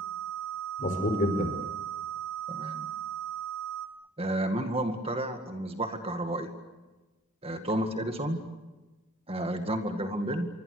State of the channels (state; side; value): normal; both; correlation 0.53